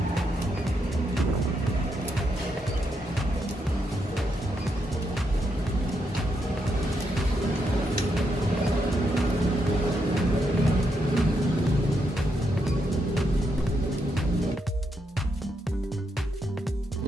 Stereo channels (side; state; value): both; normal; correlation 0.80